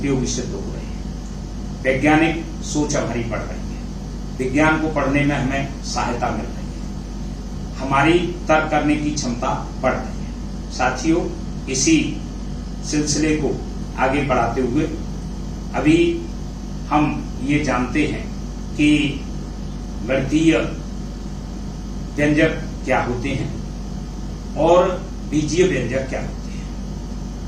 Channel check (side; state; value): both; identical; correlation 1.00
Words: सिद्ध हो रहे हैं। वैज्ञानिक सोच हमारी बढ़ रही है, विज्ञान को पढ़ने में हमें सहायता मिल रही है, हमारी तर्क करने की क्षमता बढ़ रही है। साथियों, इसी सिलसिले को आगे बढ़ाते हुए अभी हम ये जानते हैं कि गणितीय व्यंजक क्या होते हैं और बीजीय व्यंजक क्या होते हैं।